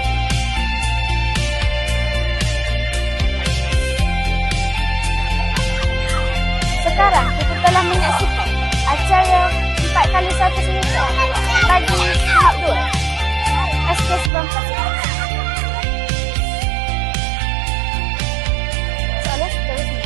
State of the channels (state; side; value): drops out; left; at 14.3 s